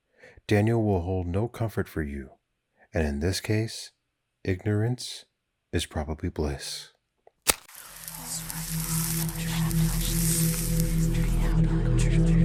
Daniel will hold no comfort for you, and in this case, ignorance is probably bliss.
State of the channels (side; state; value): both; identical; correlation 1.00